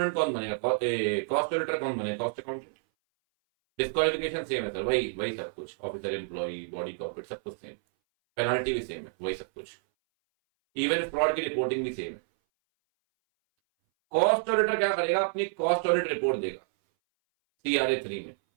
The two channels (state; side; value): silent; left; 58 dB below the other